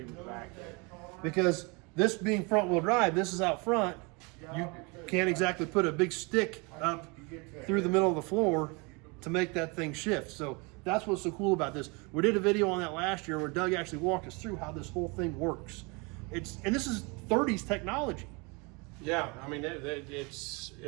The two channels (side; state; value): left; quieter; 29.4 dB